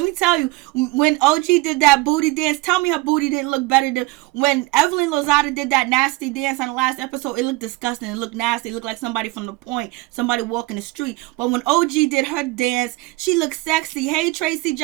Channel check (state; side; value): quieter; left; 21.2 dB